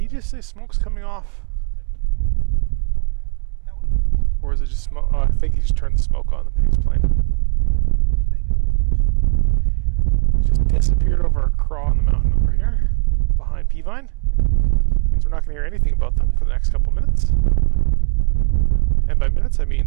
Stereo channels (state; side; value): quieter; left; 35.3 dB